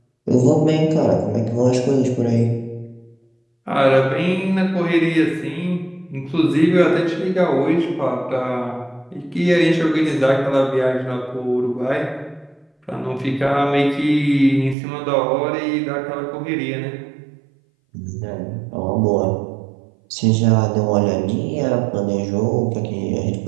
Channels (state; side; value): drops out; left; at 14.8 s